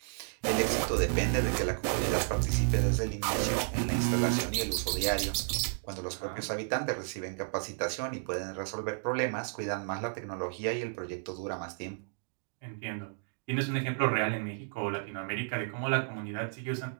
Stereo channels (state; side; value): silent; left; digital silence